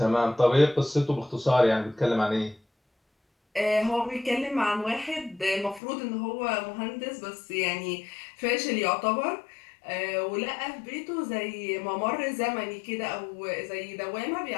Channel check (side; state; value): right; drops out; at 5.8 s